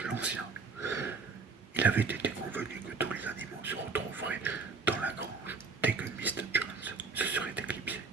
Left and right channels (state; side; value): quieter; left; 4.8 dB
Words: l'Ancien. Il avait été convenu que tous les animaux se retrouveraient dans la grange dès que Mr. Jones se serait éclipsé.